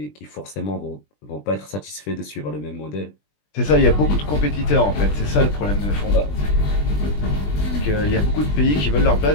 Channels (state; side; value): late; right; 20 ms